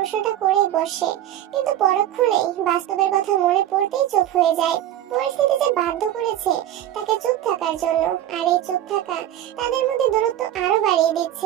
করেই বসে, কিন্তু পরক্ষণেই বাস্তবের কথা মনে পড়তেই চুপ হয়ে যায়। পরিস্থিতি যে বাধ্য করেছে তাকে চুপ থাকার জন্য, আর এই চুপ থাকা তাদের মধ্যে দূরত্ব আরো বাড়িয়ে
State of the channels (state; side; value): quieter; left; 12.2 dB